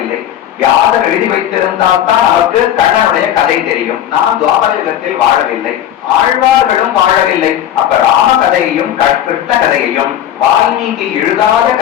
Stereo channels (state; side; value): quieter; right; 11.0 dB